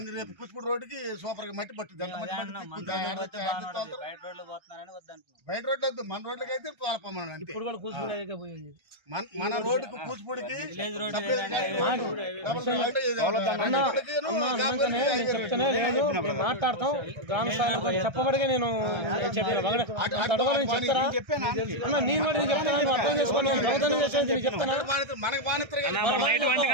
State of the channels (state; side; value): late; left; 1.3 ms